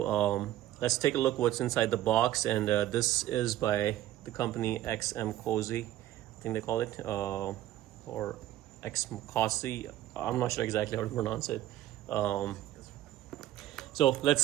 let's take a look what's inside the box. And this is by the company XMCOSY, I think they call it, or XMCOSY. I'm not sure exactly how to pronounce it. So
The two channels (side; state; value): left; quieter; 13.7 dB